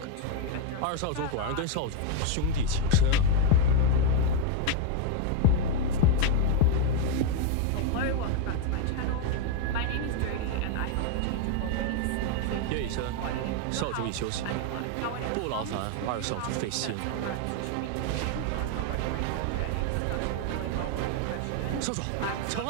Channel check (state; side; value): different; both; correlation 0.01